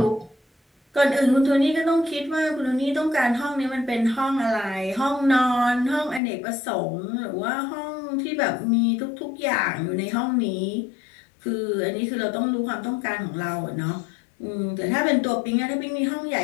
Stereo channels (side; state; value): right; drops out; at 6.2 s